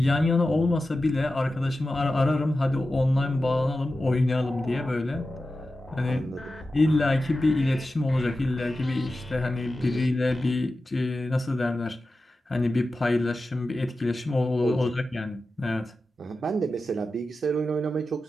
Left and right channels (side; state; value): both; normal; correlation 0.93